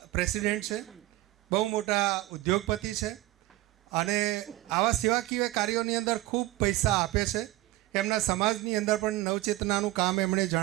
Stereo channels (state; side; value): quieter; left; 17.6 dB